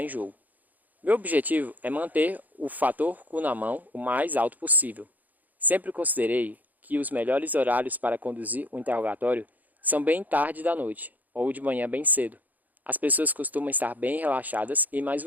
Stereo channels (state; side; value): late; left; 0.082 ms